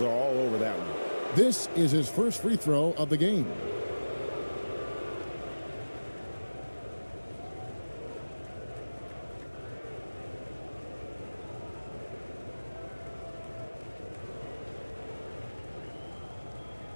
are all over that one. This is his first free throw of the game.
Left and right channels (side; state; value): both; inverted; correlation -1.00